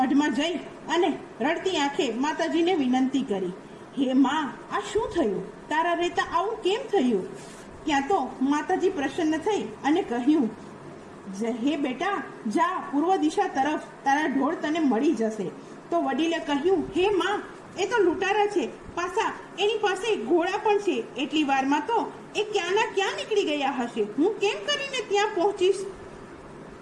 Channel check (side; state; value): both; identical; correlation 1.00